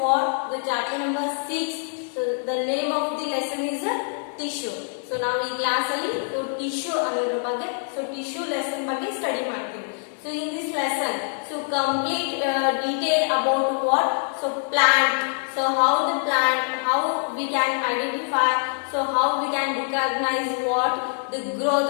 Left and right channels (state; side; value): silent; right; 62 dB below the other